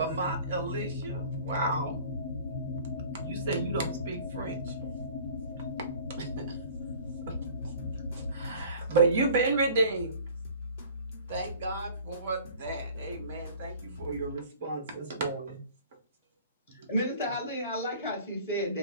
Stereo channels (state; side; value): inverted; both; correlation -0.47